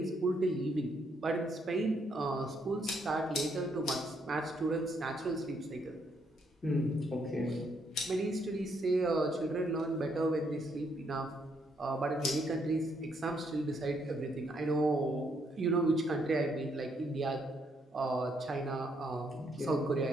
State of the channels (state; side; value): normal; both; correlation 0.73